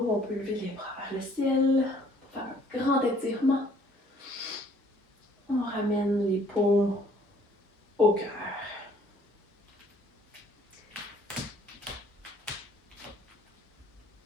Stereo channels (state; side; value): normal; both; correlation 0.59